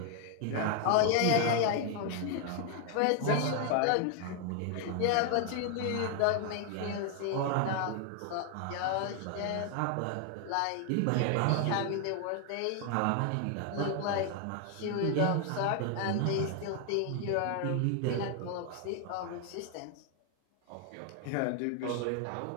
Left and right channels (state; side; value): different; both; correlation 0.00